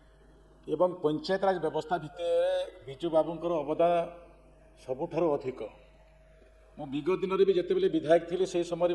एवं पंचायतराज व्यवस्था भितर बिजू बाबूंकर अवदान सबुठार अधिक। मो विगत दिन में जिते बड़े विधायक थी से समय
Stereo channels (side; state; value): both; identical; correlation 1.00